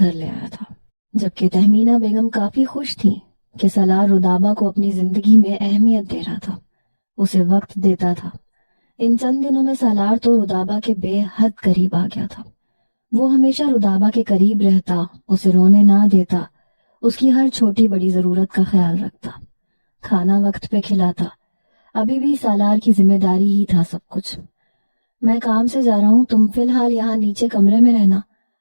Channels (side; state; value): both; inverted; correlation -1.00